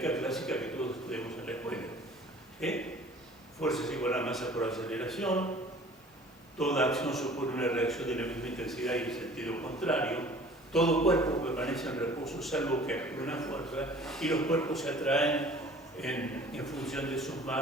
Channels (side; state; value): both; normal; correlation 0.49